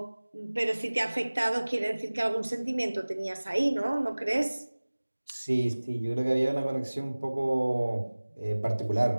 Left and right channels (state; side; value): inverted; both; correlation -1.00